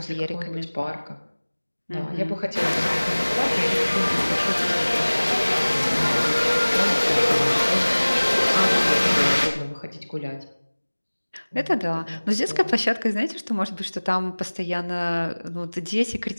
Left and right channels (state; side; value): inverted; both; correlation -1.00